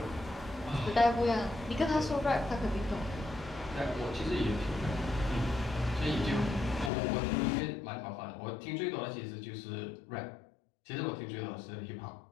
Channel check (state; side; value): drops out; right; at 6.9 s